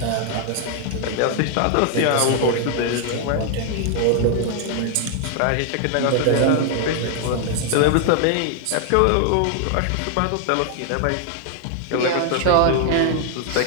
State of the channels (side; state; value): both; different; correlation 0.00